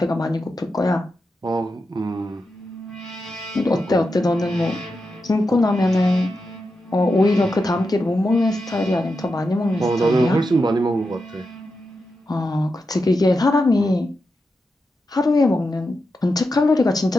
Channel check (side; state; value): both; normal; correlation 0.88